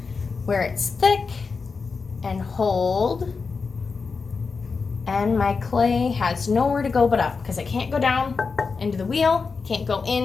where it's thick and hold. And my clay has nowhere to go but up because I can't go down into the wheel, can't go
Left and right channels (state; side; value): quieter; right; 4.8 dB